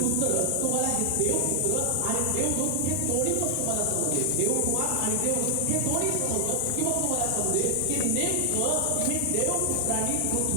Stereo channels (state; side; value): different; both; correlation 0.00